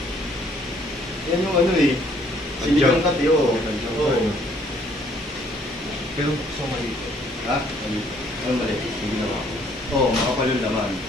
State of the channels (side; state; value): both; normal; correlation 0.63